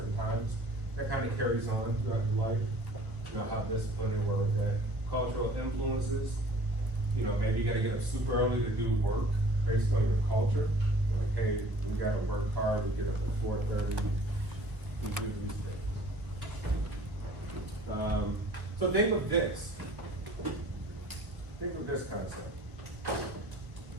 times. That kind of carries on throughout your life. You know, how disciplined they were with that. Cultural influences. You know, maybe you got to get up super early to do work based on your culture. Like, hey, we got to work hard. We get up at 4:30. We do these things. So think of this. Think of this concept.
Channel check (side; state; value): left; late; 1.2 ms